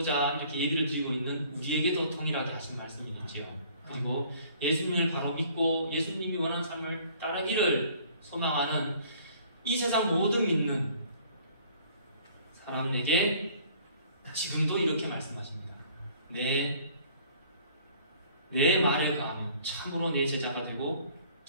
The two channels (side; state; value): both; inverted; correlation -0.55